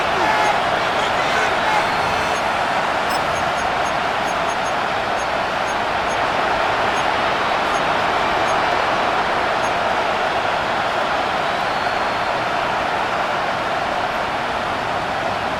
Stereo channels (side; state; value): both; identical; correlation 1.00